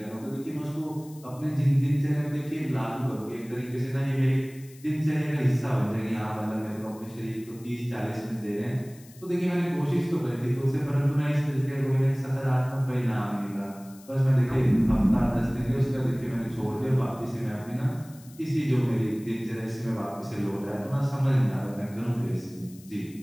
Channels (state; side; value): noise; left; hiss, 23 dB below the sound